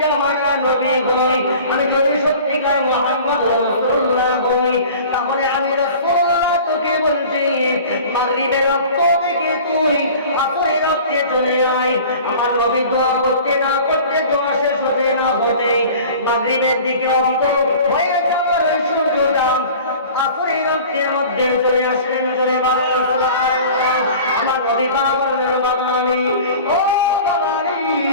জামানার নবী হই, আমি যদি সত্যিকার মুহাম্মদ রাসূলুল্লাহ হই, তাহলে আমি রাসূলুল্লাহ তোকে বলছি, মাগরিবের রক্ত থেকে তুই আসরের রক্তে চলে আয়। আমার নবী দোয়া করতে না করতে, দোয়া শেষ হতে না হতে মাগরিবের দিকে অস্ত হয়ে যাওয়ার সূর্যটা আসরের রক্তের মধ্যে চলে আসলেন। জোরে বলেন সুবহানাল্লাহ। আমার নবী বললেন, বাবা আলী, ও বাবা আলী,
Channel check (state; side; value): inverted; both; correlation -0.42